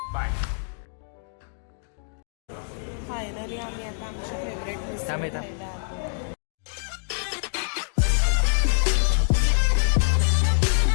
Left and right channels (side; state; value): right; silent; digital silence